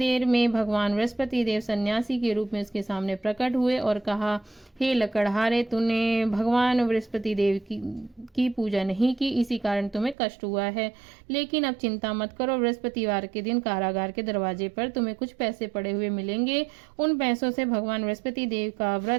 में भगवान बृहस्पति देव सन्यासी के रूप में उसके सामने प्रकट हुए और कहा, हे लकड़हारे, तूने भगवान बृहस्पति देव की पूजा नहीं की, इसी कारण तुम्हें कष्ट हुआ है। लेकिन अब चिंता मत करो, बृहस्पतिवार के दिन कारागार के दरवाजे पर तुम्हें कुछ पैसे पड़े हुए मिलेंगे। उन पैसों से भगवान बृहस्पति देव का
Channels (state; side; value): drops out; left; at 10.2 s